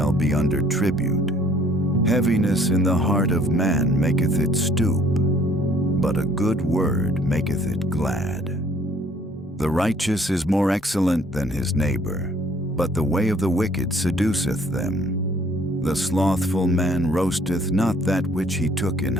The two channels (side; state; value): both; normal; correlation 0.59